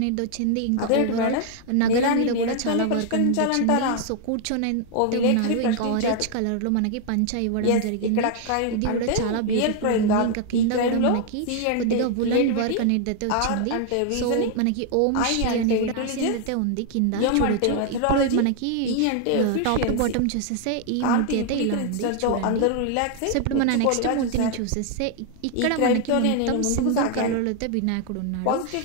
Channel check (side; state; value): both; different; correlation 0.00